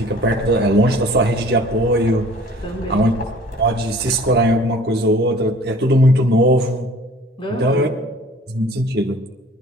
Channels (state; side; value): normal; both; correlation 0.49